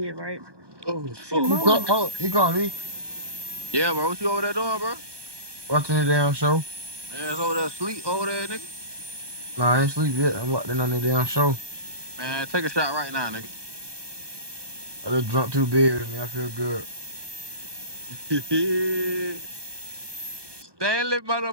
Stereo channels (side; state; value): left; late; 1.2 ms